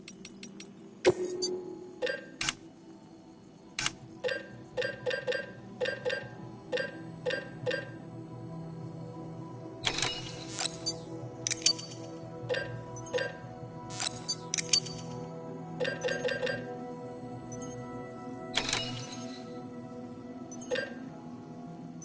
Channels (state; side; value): identical; both; correlation 1.00